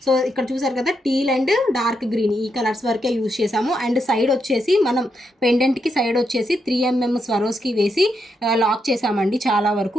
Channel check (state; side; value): normal; both; correlation 0.81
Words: సో ఇక్కడ చూసారు కదా టీల్ అండ్ డార్క్ గ్రీన్ ఈ కలర్స్ వరకే యూజ్ చేసాము. అండ్ సైడ్ వచ్చేసి మనం పెండెంట్కి సైడ్ వచ్చేసి 3mm స్వరోస్కి వేసి లాక్ చేసామండి. చాలా